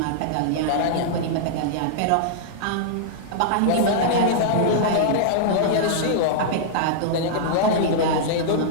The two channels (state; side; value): different; both; correlation -0.02